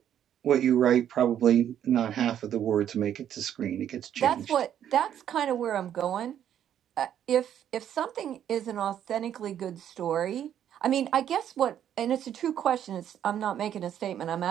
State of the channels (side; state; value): left; quieter; 10.1 dB